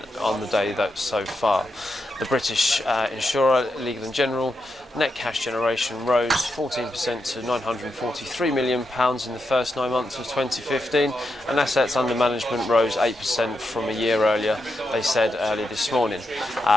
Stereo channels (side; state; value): both; normal; correlation 0.85